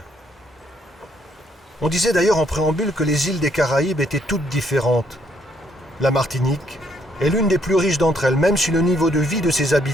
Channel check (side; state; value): both; normal; correlation 0.70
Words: On disait d'ailleurs en préambule que les îles des Caraïbes étaient toutes différentes. La Martinique est l'une des plus riches d'entre elles, même si le niveau de vie de ses